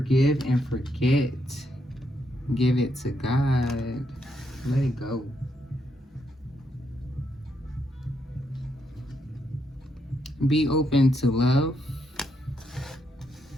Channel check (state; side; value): normal; both; correlation 0.78